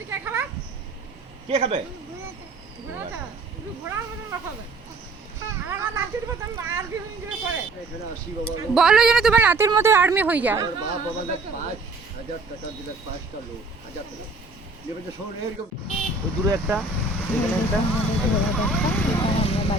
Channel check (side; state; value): left; quieter; 3.4 dB